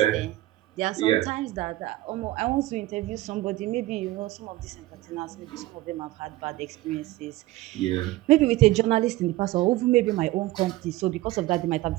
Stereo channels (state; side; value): quieter; left; 17.3 dB